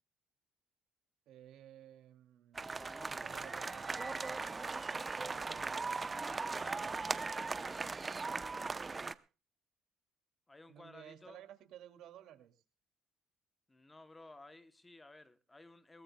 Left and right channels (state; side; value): quieter; left; 3.6 dB